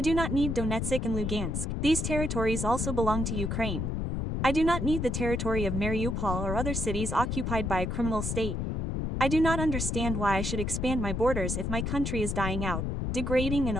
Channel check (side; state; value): left; noise; rumble, 1 dB below the sound